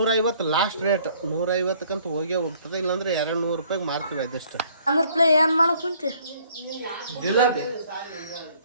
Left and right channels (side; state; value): both; inverted; correlation -0.60